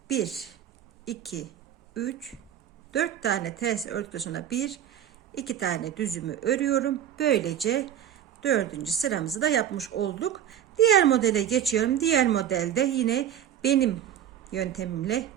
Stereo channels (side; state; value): left; quieter; 10.2 dB